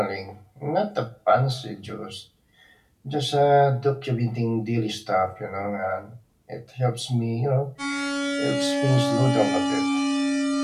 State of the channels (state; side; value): identical; both; correlation 1.00